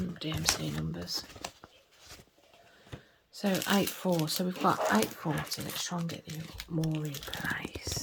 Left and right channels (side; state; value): both; identical; correlation 1.00